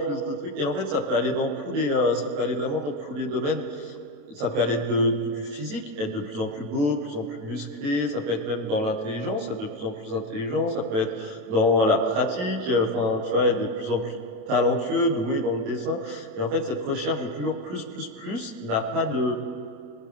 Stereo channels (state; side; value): late; left; 27 ms